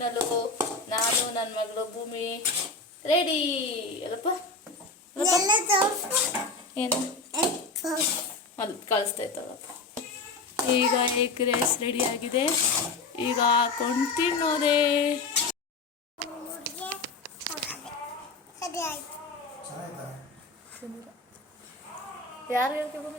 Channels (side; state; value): right; quieter; 3.7 dB